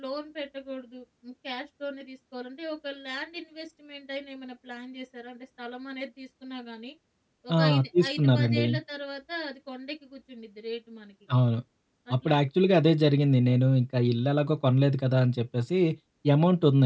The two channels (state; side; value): identical; both; correlation 1.00